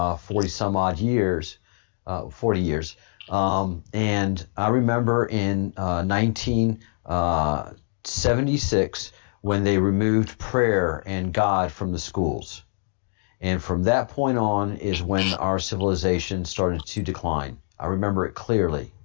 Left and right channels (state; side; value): silent; right; 62 dB below the other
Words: 40 some odd years, 40 years. And I remember in 1976 when they removed prayer and God from the schools. And from that point on is when our civilization started to decline. I remember it clearly.